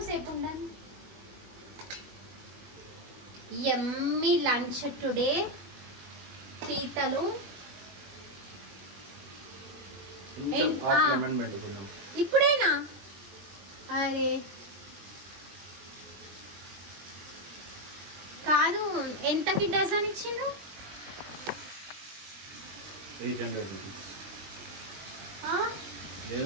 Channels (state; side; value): late; left; 20 ms